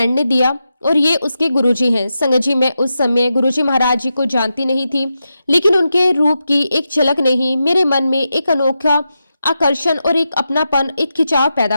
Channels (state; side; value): inverted; both; correlation -0.88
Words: ने दिया और ये उसके गुरुजी हैं। संगत जी, मैं उस समय गुरुजी महाराज जी को जानती नहीं थी, लेकिन उनके रूप की एक झलक ने ही मेरे मन में एक अनोखा आकर्षण और एक अपनापन, एक खिंचाव